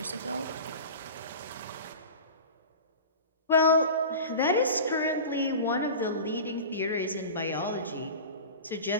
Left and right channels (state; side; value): inverted; both; correlation -0.33